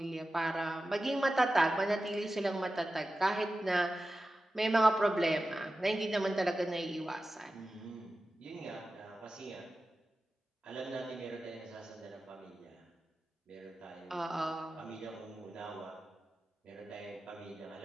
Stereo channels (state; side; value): normal; both; correlation 0.94